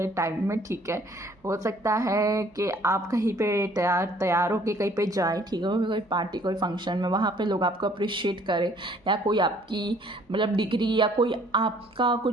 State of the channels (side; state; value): both; normal; correlation 0.59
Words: टाइम में, ठीक है। हो सकता है कि आप कहीं पे तैयार होके कहीं पे जाए, ठीक है, कोई पार्टी कोई फंक्शन में, वहाँ पे लोग आपको अप्रिशिएट करें, या कोई आपकी मतलब डिग्री या कोई आपका